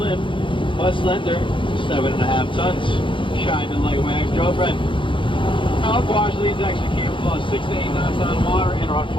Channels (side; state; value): right; late; 0.24 ms